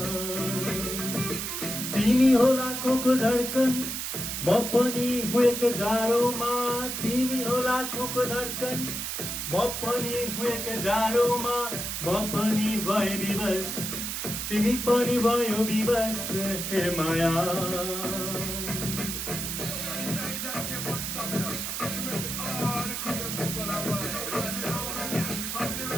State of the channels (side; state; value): right; noise; hiss, 3 dB below the sound